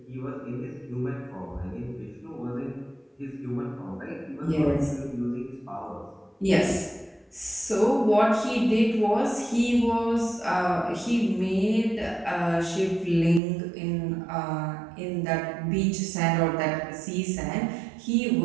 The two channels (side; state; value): left; drops out; at 13.4 s